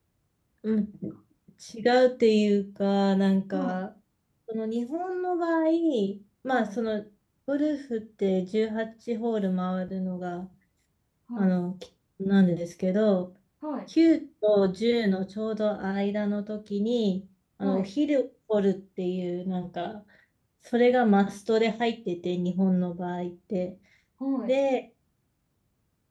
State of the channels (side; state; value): both; identical; correlation 1.00